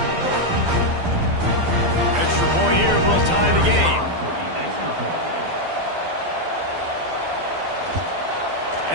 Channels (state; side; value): late; left; 12 ms